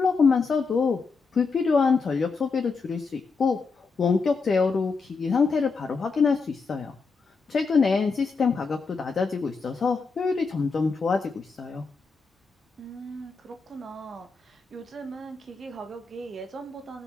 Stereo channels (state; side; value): quieter; right; 4.6 dB